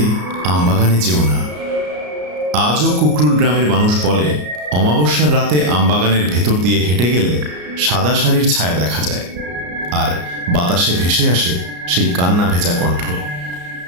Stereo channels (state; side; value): late; left; 34 ms